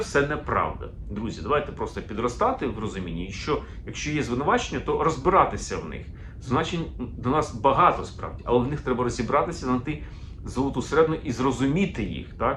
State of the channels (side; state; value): both; identical; correlation 1.00